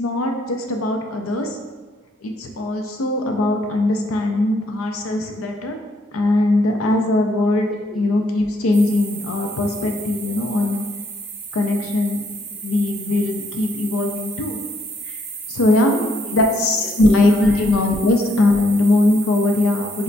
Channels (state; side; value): normal; both; correlation 0.71